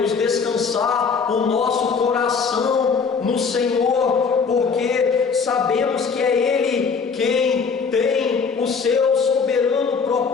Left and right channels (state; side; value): quieter; right; 5.5 dB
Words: descansar o nosso coração no Senhor, porque sabemos que é Ele quem tem o seu soberano